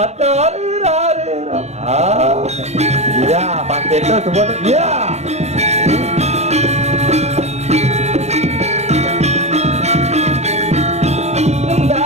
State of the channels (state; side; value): late; left; 0.32 ms